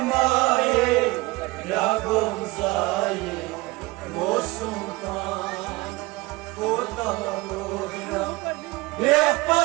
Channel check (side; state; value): left; quieter; 22.0 dB